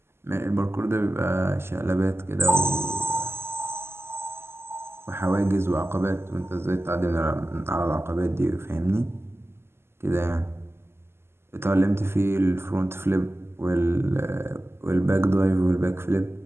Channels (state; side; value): late; left; 0.12 ms